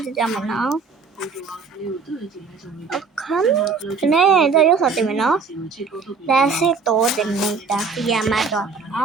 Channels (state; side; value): quieter; left; 5.0 dB